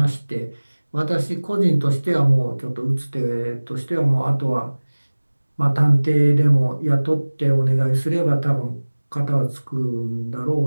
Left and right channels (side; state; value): both; inverted; correlation -1.00